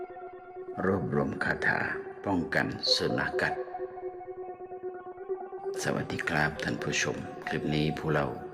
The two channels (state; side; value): identical; both; correlation 1.00